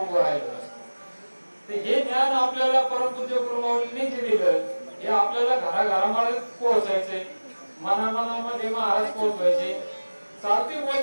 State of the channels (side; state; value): both; inverted; correlation -1.00